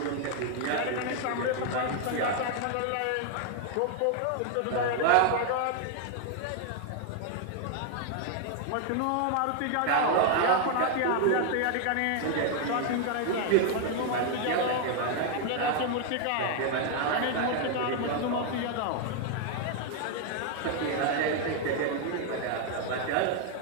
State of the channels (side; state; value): both; different; correlation 0.00